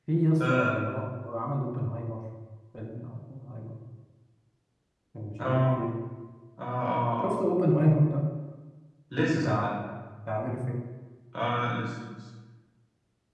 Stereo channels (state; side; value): identical; both; correlation 1.00